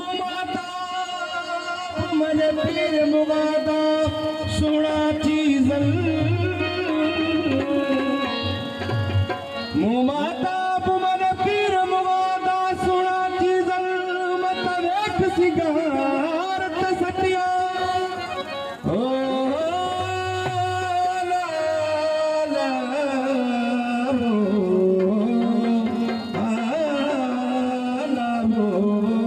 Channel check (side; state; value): both; identical; correlation 1.00